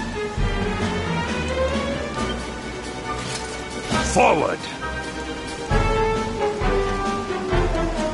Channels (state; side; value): identical; both; correlation 1.00